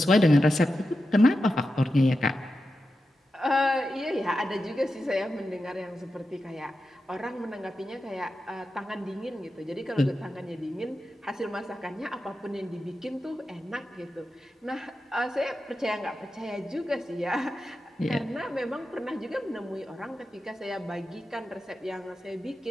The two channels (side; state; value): both; normal; correlation 0.91